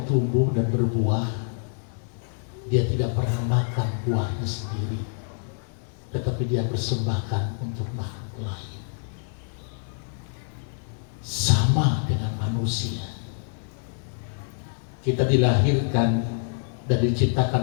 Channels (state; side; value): silent; right; digital silence